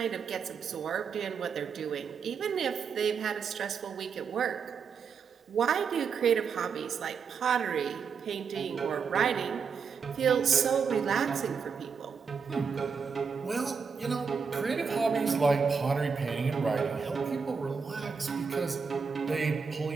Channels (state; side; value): quieter; left; 5.9 dB